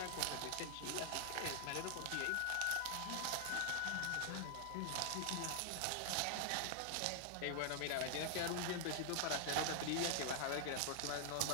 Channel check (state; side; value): different; both; correlation 0.00